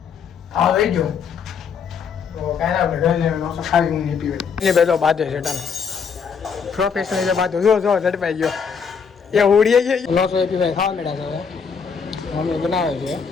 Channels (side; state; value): right; quieter; 6.2 dB